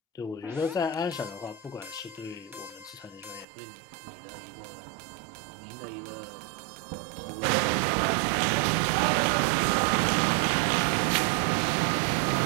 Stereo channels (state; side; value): drops out; left; at 3.5 s